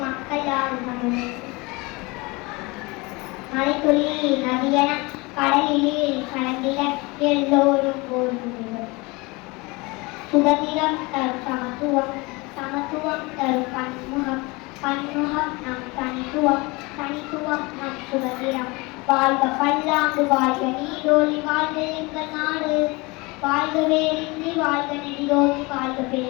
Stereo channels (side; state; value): right; quieter; 25.1 dB